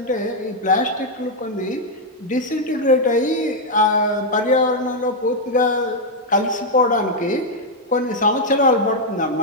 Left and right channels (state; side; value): normal; both; correlation 0.00